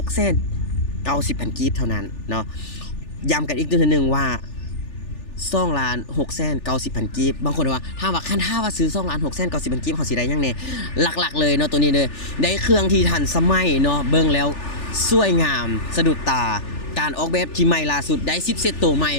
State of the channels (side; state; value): right; late; 3.4 ms